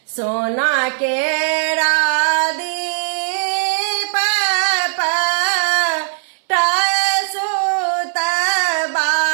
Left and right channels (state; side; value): silent; left; 64 dB below the other